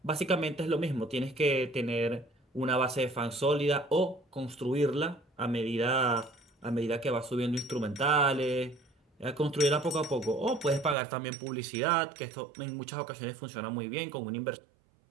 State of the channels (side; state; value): left; drops out; at 11.0 s